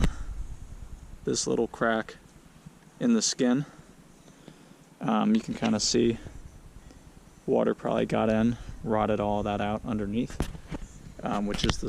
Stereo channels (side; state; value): both; identical; correlation 1.00